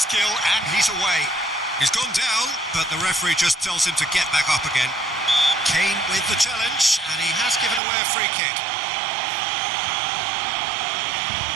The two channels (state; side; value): drops out; left; at 7.8 s